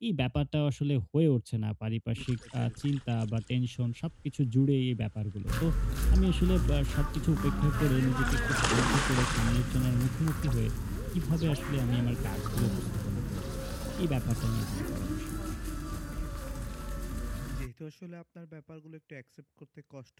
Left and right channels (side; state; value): both; identical; correlation 1.00